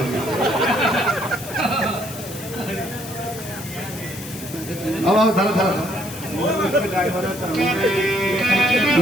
अब धर धर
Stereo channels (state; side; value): noise; left; hiss, 13 dB below the sound